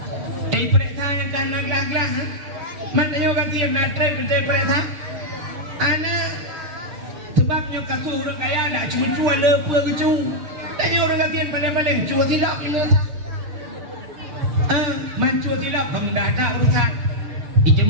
Periksa yang kan naglah-glah. Mana yo ganti natre periksa. Ana sebabnya kasus orang kaya nak cuma lepa kecu. Tadi orang ganti paling-paling cua silap ni lah. Mancua silap kamu dah tak urusan.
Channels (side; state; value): left; late; 6.7 ms